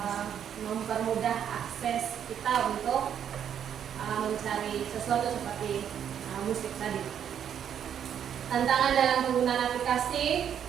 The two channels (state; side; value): quieter; left; 8.9 dB